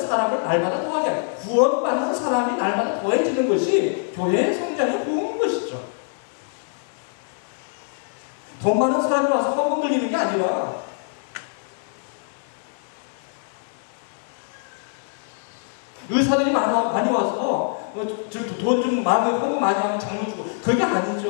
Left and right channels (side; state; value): right; silent; digital silence